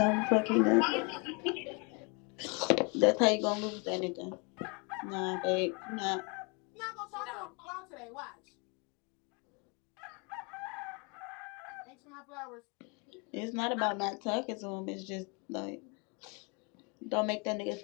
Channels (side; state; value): right; quieter; 32.1 dB